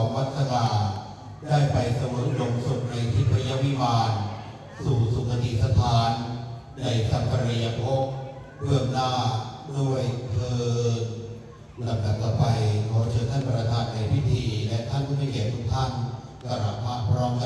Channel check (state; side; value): identical; both; correlation 1.00